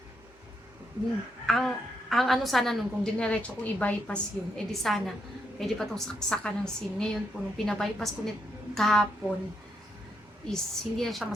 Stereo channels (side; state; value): both; normal; correlation 0.78